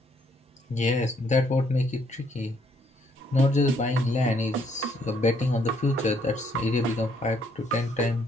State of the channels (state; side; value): normal; both; correlation 0.68